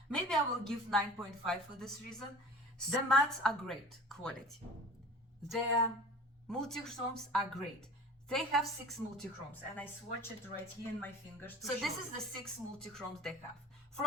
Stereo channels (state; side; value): normal; both; correlation 0.41